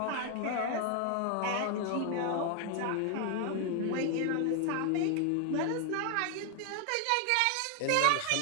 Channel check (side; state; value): both; different; correlation 0.00